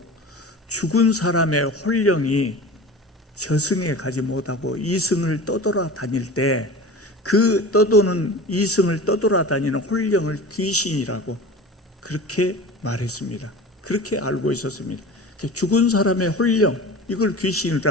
죽은 사람의 혼령이 저승에 가지 못하고 이승을 떠돌아다닐 때 그 떠도는 이승을 떠돌아다니는 혼령을 귀신이라고 그렇게 말했습니다. 그렇게 알고 있었습니다. 죽은 사람의 혼령, 이걸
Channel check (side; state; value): both; normal; correlation 0.35